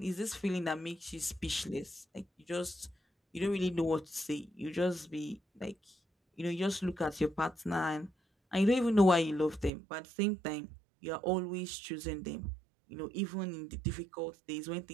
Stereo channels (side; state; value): left; drops out; at 9.7 s